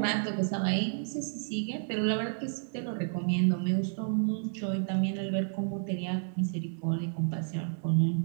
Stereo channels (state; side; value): silent; left; 57 dB below the other